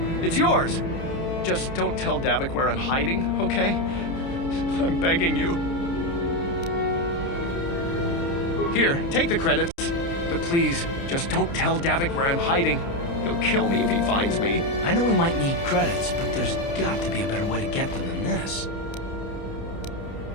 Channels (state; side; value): late; right; 29 ms